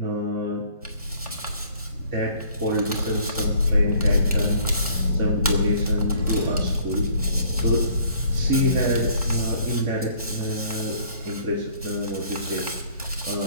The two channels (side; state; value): both; inverted; correlation -0.58